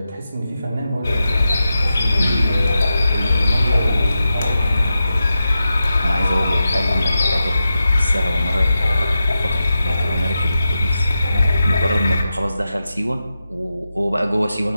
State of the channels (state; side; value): inverted; both; correlation -0.90